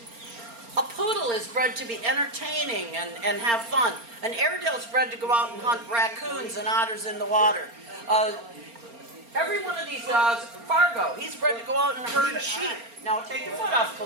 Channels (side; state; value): left; late; 4.3 ms